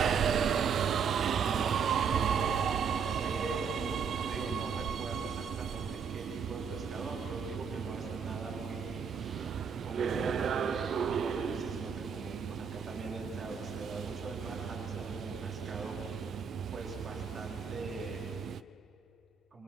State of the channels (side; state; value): left; quieter; 6.5 dB